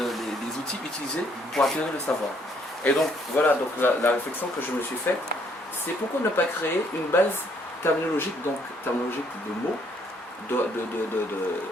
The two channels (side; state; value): both; normal; correlation 0.67